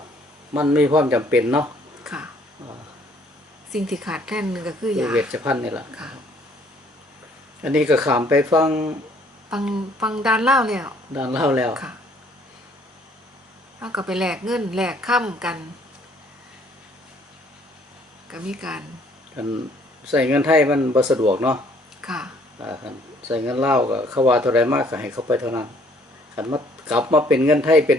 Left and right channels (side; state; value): both; normal; correlation 0.62